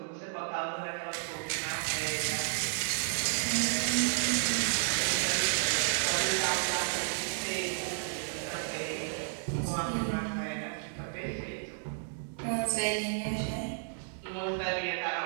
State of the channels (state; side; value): silent; left; digital silence